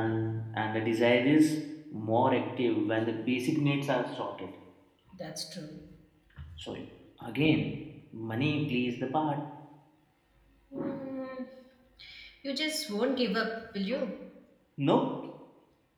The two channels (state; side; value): identical; both; correlation 1.00